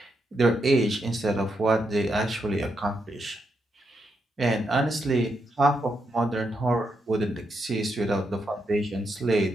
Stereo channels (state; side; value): normal; both; correlation 0.81